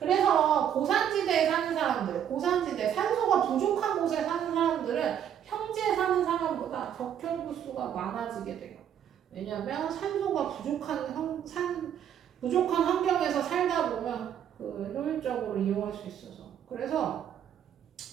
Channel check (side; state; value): left; quieter; 9.5 dB